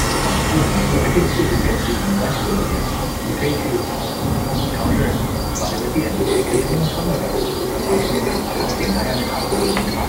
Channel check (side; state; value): both; identical; correlation 1.00